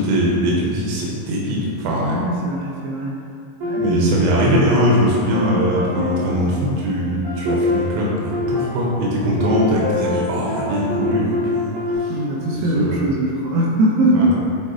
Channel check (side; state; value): left; late; 22 ms